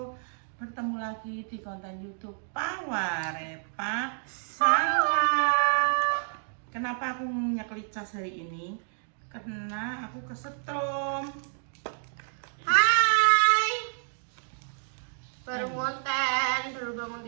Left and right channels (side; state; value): left; silent; digital silence